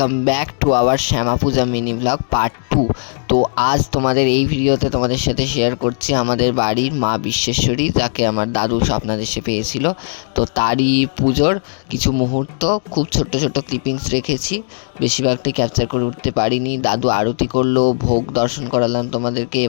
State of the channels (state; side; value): silent; right; digital silence